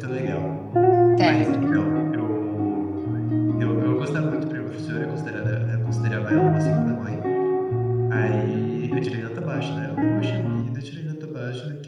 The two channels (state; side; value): identical; both; correlation 1.00